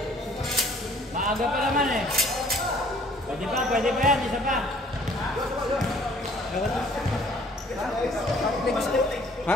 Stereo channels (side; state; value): both; normal; correlation 0.57